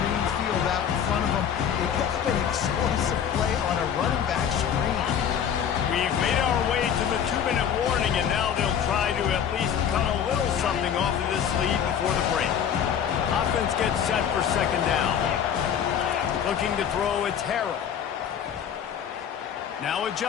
field out in front of him. They picked up an explosive play on a running back screen. We've made our way to the 2-minute warning, and now they'll try to at least cut a little something off of this lead before the break. Offense gets set for second down. Looking to throw, it's Harrell. Now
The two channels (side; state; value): right; quieter; 8.5 dB